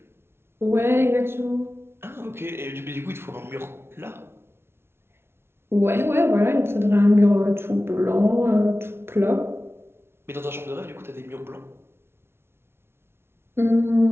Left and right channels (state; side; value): late; left; 0.12 ms